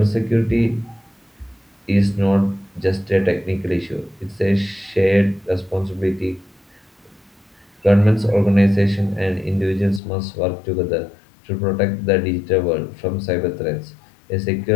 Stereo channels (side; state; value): right; drops out; at 10.0 s